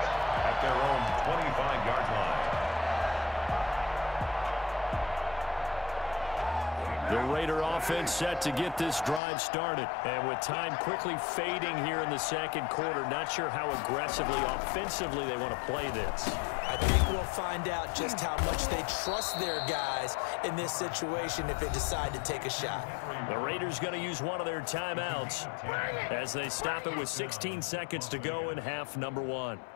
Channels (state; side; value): drops out; right; at 9.2 s